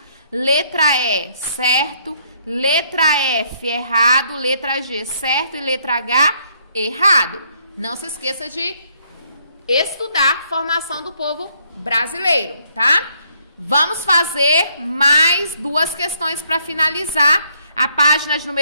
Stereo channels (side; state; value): both; inverted; correlation -0.70